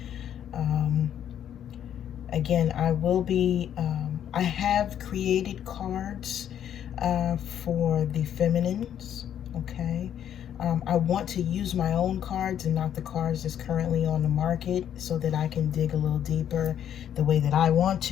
Again, I will be, I have created cards for the feminines, okay? I want to use my own cards and not the cards that's currently on the market, so that I can dig a little deeper the way that I want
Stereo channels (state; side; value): quieter; right; 9.9 dB